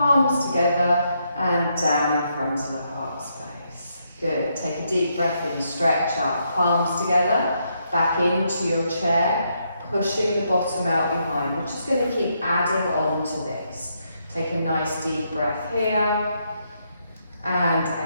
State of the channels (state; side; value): inverted; both; correlation -0.78